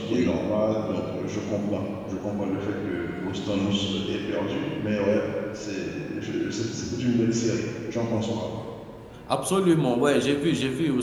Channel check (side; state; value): both; identical; correlation 1.00